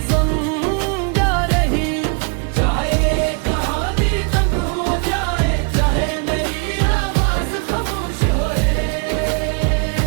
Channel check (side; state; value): left; quieter; 36.2 dB